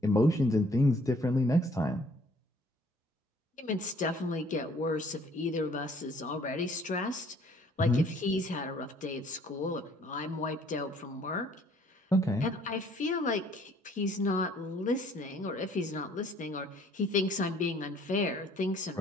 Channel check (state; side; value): normal; both; correlation 0.59